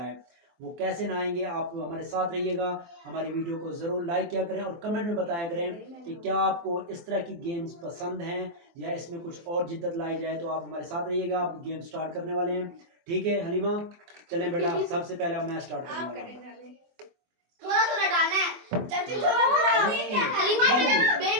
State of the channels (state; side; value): late; left; 23 ms